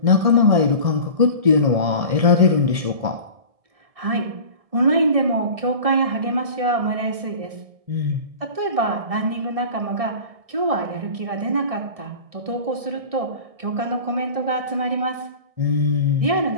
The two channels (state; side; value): late; left; 1.6 ms